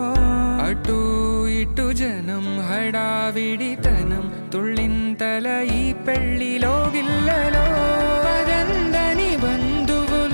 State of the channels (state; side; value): inverted; both; correlation -1.00